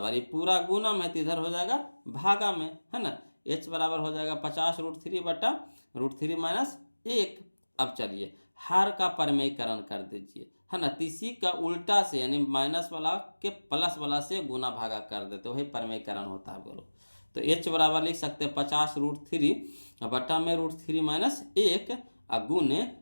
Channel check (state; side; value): inverted; both; correlation -1.00